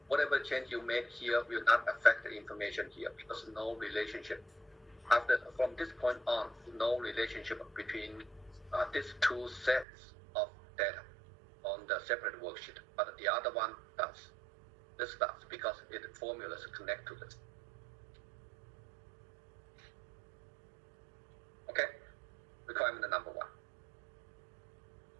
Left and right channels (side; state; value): left; drops out; at 9.9 s